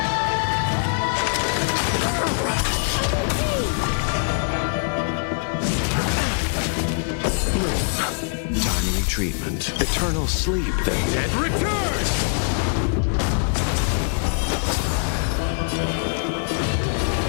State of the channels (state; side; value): silent; right; 64 dB below the other